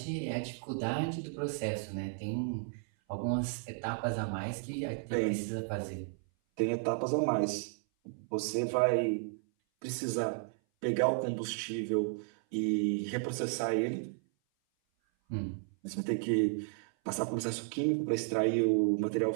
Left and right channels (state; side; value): silent; left; 55 dB below the other